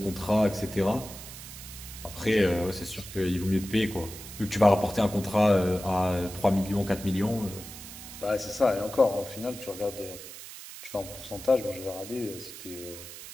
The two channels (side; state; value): right; noise; hiss, 13 dB below the sound